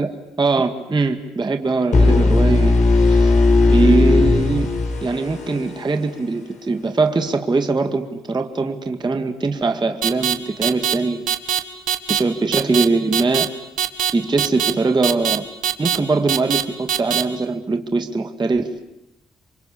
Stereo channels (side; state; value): both; normal; correlation 0.81